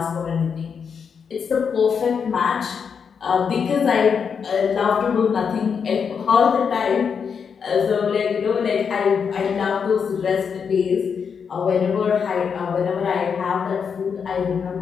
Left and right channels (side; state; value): right; quieter; 6.5 dB